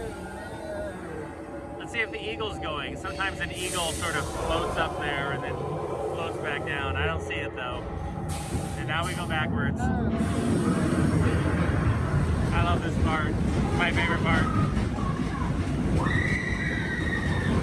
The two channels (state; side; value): identical; both; correlation 1.00